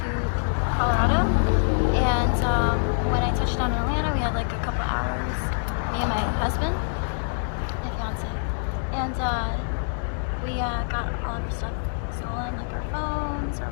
Colorado, and when I touched down in Atlanta, we had like a couple hours, me and my husband, my fiance, and we got all of our stuff stolen, like our phones, our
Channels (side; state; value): right; silent; 62 dB below the other